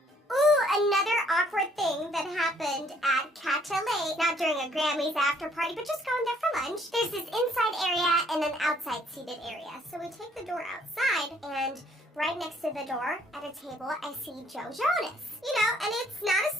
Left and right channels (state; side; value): normal; both; correlation 0.63